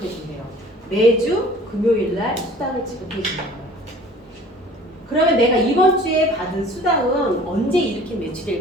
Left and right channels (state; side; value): normal; both; correlation 0.48